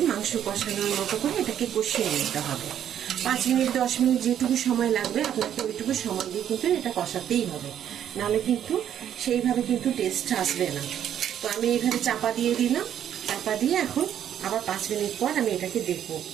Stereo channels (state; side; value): quieter; left; 10.0 dB